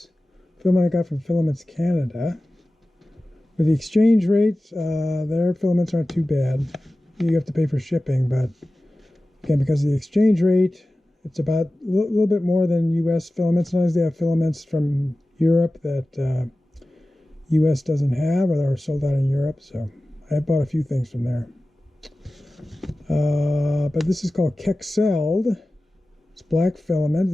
filament I got from Filaments Canada. With the exchange rate, their filaments aren't too bad. You have to pay for shipping, but again, because of the exchange rate, it's about a little bit more than US filaments. Sometimes they have filaments from Europe that US doesn't have, or they're sold out in Europe. So I bought a few things from there. But this is called Kexeld. It's black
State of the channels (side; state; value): both; normal; correlation 0.96